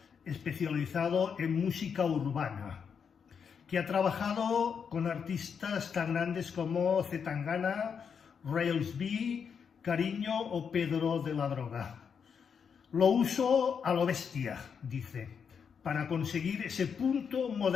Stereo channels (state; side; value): quieter; right; 6.7 dB